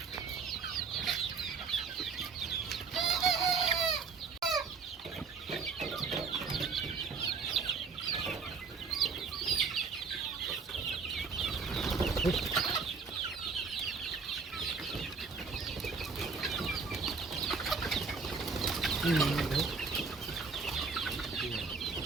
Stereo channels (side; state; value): left; quieter; 5.0 dB